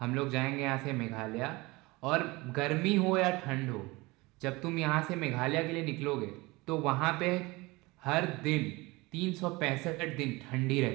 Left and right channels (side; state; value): left; quieter; 22.9 dB